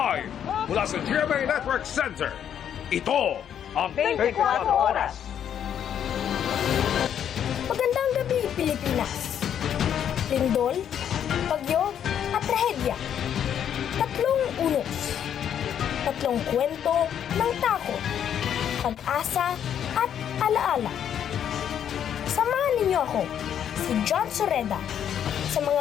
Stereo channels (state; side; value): quieter; right; 9.2 dB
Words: mula sa GMA Network Center, ito ang 24 Oras. Magandang gabi, Pilipinas. Lindol, bagyo, at trahedya. Tatlong unos. Tatlong kwento ng takot, pag-asa, at alaala. Samahan ninyo ako, si John Soreda, sa mga